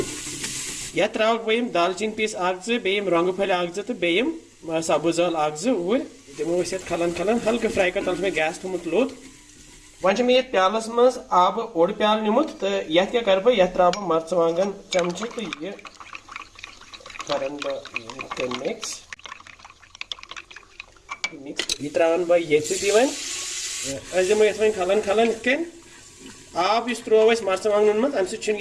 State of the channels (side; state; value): both; identical; correlation 1.00